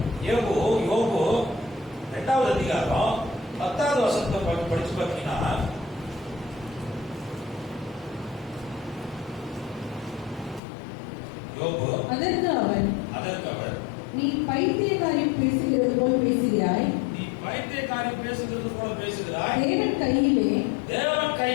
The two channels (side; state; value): right; drops out; at 10.6 s